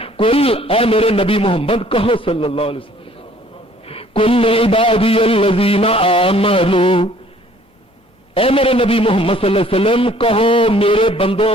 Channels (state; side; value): normal; both; correlation 0.57